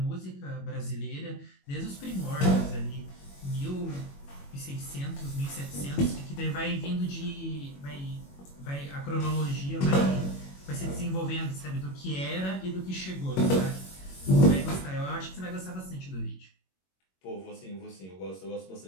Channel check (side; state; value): right; late; 21 ms